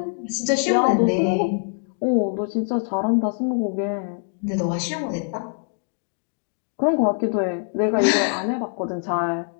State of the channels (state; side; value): silent; right; 58 dB below the other